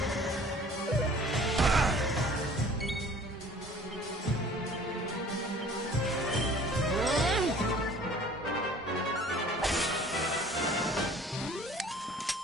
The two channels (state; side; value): normal; both; correlation 0.49